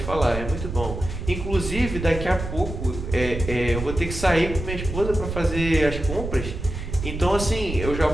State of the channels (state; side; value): noise; right; rumble, 7 dB below the sound